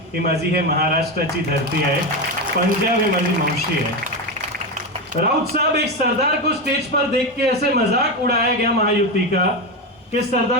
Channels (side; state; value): both; normal; correlation 0.14